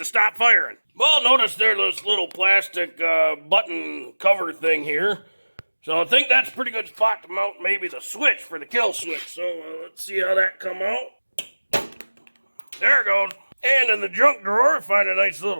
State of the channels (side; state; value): both; inverted; correlation -1.00